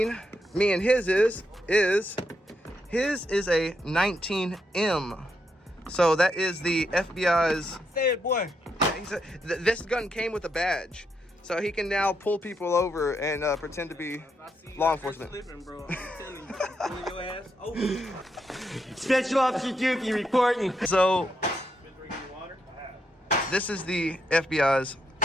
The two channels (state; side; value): normal; both; correlation 0.80